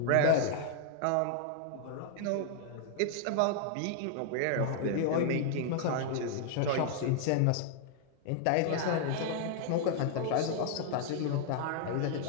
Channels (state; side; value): different; both; correlation -0.01